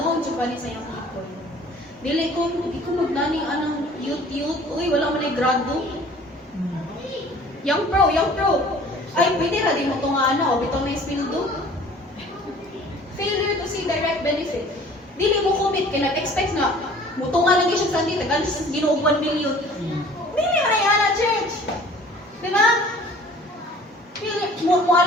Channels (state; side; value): normal; both; correlation 0.49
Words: pa sa iyong people. Dili ko magnaning anong youth, uy, wala mo na yung grado. Young pro. Ay, pwede na di mo ito nga o bitaw na ispildo. Failure to see direct benefit. Dili mo commit, kaya nag-expect na, mutunga lang siya sa Sunday, tagaan siya sa Ginoo 1 million. Dili mo na yan, church. Diba?